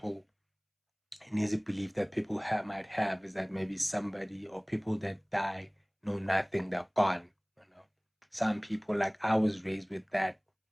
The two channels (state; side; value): identical; both; correlation 1.00